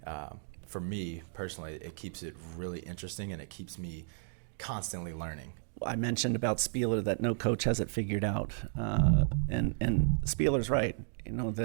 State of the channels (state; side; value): silent; left; digital silence